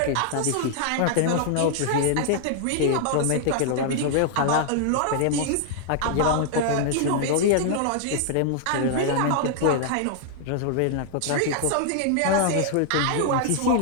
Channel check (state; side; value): different; both; correlation 0.00